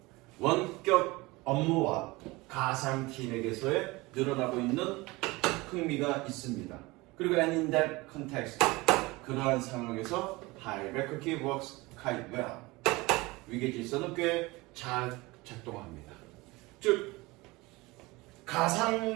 원격 업무와 가상팀에게서의 늘어나고 있는 흥미가 있습니다. 그리고 and in that context, 그러한 상황에서 hierarchy works quite well. 위계 질서는 꽤 잘 작동합니다. 즉,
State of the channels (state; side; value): quieter; left; 22.3 dB